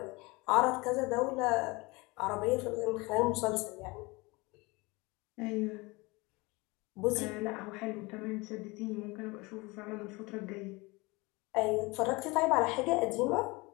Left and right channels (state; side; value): quieter; right; 24.6 dB